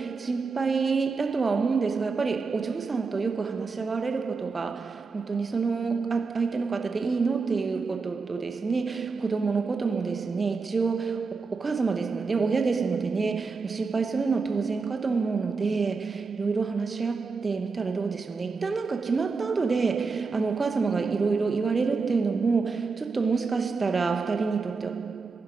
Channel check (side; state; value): left; quieter; 4.5 dB